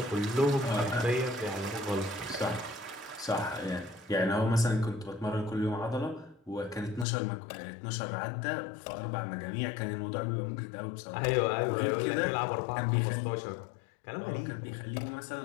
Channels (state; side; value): drops out; right; at 7.1 s